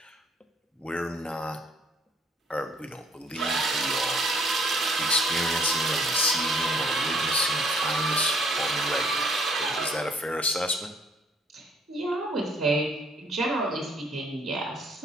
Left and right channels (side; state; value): both; normal; correlation 0.62